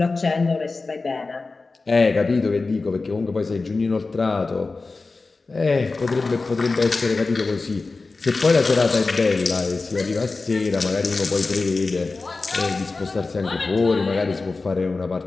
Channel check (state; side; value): quieter; right; 3.8 dB